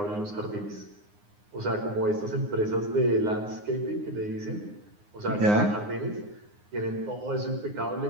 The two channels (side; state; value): left; late; 9.7 ms